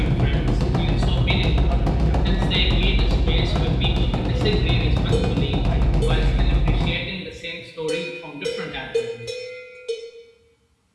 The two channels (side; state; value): both; identical; correlation 1.00